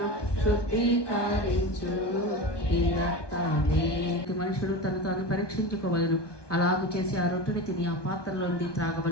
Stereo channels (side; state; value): right; late; 1.2 ms